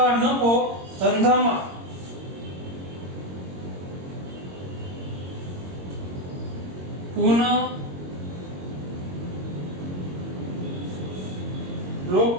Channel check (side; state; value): left; late; 22 ms